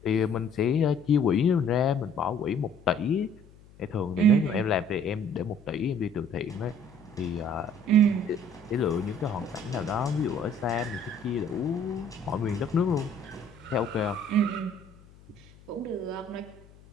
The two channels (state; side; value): noise; left; hum, 24 dB below the sound